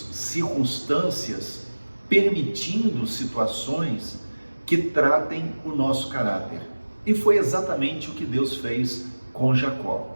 circunstâncias, permitindo situações que tratem o nosso caráter. E foi exatamente o que Deus fez com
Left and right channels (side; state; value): both; inverted; correlation -1.00